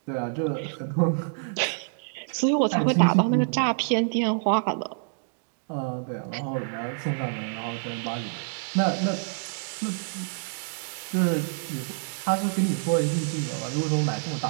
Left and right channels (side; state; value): left; silent; digital silence